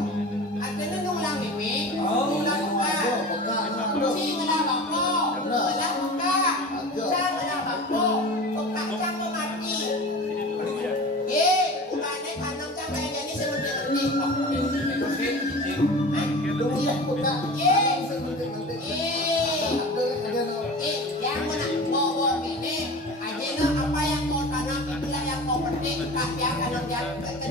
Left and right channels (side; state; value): both; normal; correlation 0.35